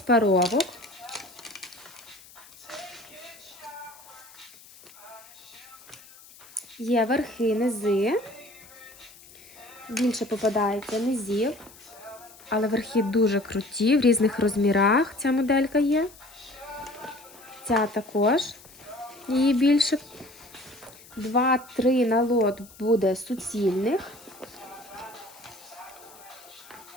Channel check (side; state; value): left; noise; hiss, 22 dB below the sound